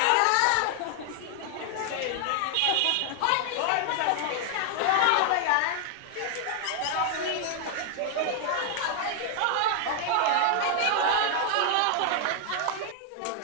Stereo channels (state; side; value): different; both; correlation 0.00